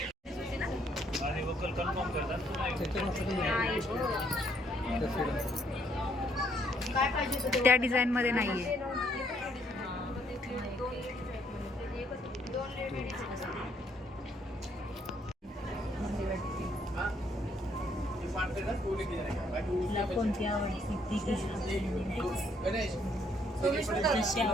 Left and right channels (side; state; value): both; normal; correlation 0.68